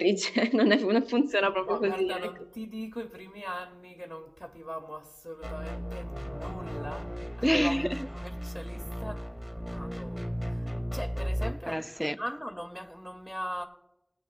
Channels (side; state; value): both; identical; correlation 1.00